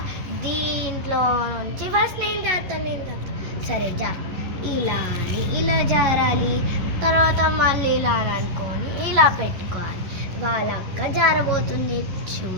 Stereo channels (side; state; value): left; late; 10 ms